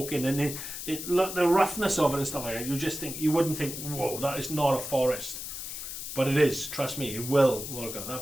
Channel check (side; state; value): left; noise; hiss, 7 dB below the sound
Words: in, and the roughness of it and stuff like that, you wouldn't think, whoa, that is not a forest. But it is, trust me, it will work out.